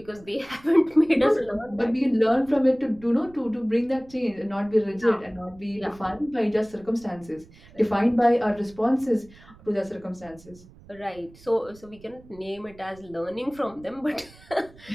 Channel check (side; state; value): right; noise; rumble, 23 dB below the sound